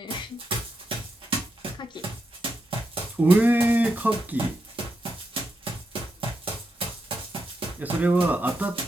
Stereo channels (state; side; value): normal; both; correlation 0.84